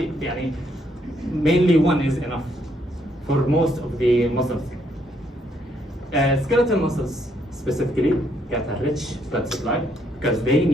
mainly one is enough for most of the muscles. Skeletal muscles specifically get a rich blood supply because they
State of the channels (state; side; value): normal; both; correlation 0.72